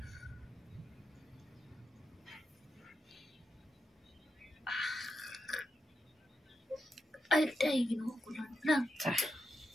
Ay, day, ginawa ko lang.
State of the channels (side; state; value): both; normal; correlation 0.86